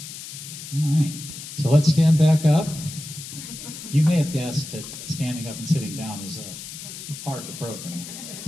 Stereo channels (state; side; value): noise; left; hiss, 11 dB below the sound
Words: All right, so let's stand back up. You may have guessed that standing up and sitting down is a part of the program.